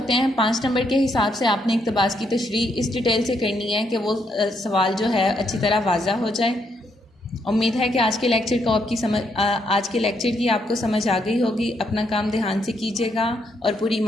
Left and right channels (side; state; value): both; normal; correlation 0.76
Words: ہیں۔ 5 نمبر کے حساب سے آپ نے اقتباس کی تشریح اس ڈیٹیل سے کرنی ہے کہ وہ سوال جو ہے اچھی طرح واضح ہو جائے۔ امید ہے کہ آج کے لیکچر کی آپ کو سمجھ آ گئی ہوگی۔ اپنا کام دھیان سے کیجیے گا اور پوری